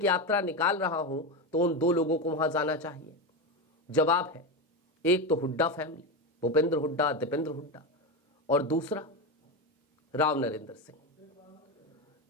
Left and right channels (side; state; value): both; normal; correlation 0.15